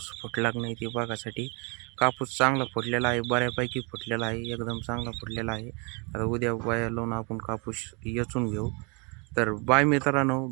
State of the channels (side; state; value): left; quieter; 32.8 dB